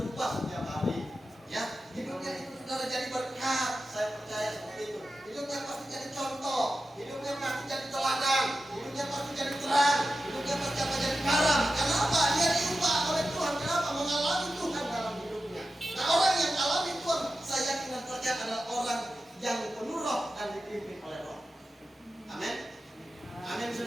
setiap hari. Ya, hidupnya itu saudara jadi berkat, saya percaya seperti itu. Hidupnya pasti jadi contoh, hidupnya pasti jadi teladan, hidupnya pasti jadi terang, hidupnya pasti akan jadi garam. Kenapa? Dia diubah oleh Tuhan. Kenapa? Mengalami Tuhan dalam hidupnya. Nah, orang yang alami Tuhan, saya yakin dan percaya adalah orang yang penuh roh dan dipimpin oleh roh. Amin. Amin,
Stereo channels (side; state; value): both; normal; correlation 0.92